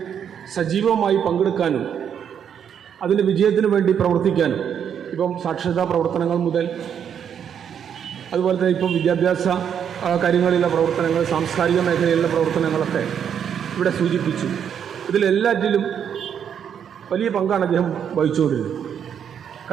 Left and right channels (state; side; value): quieter; left; 8.3 dB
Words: സജീവമായി പങ്കെടുക്കാനും അതിൻ്റെ വിജയത്തിന് വേണ്ടി പ്രവർത്തിക്കാനും, ഇപ്പം സാക്ഷരതാ പ്രവർത്തനങ്ങൾ മുതൽ അതുപോലെ തന്നെ ഇപ്പം വിദ്യാഭ്യാസ കാര്യങ്ങളിലുള്ള പ്രവർത്തനങ്ങൾ, സാംസ്കാരിക മേഖലയിലുള്ള പ്രവർത്തനങ്ങളൊക്കെ ഇവിടെ സൂചിപ്പിച്ചു. ഇതിലെല്ലാറ്റിലും വലിയ പങ്കാണ് അദ്ദേഹം വഹിച്ചുകൊണ്ടിരുന്നത്.